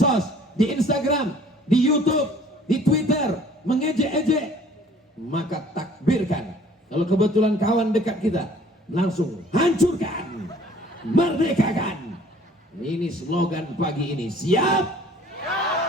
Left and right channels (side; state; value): both; normal; correlation 0.54